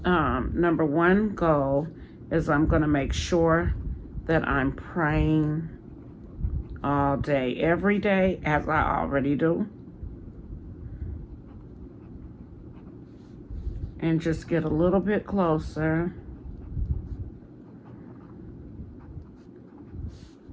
Number one goal is I'm going to make sure that I'm praying all day, every day, as I already do. And just get a little bit closer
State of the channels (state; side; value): identical; both; correlation 1.00